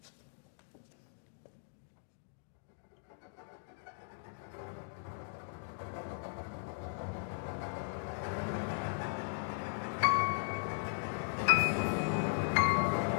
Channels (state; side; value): silent; right; digital silence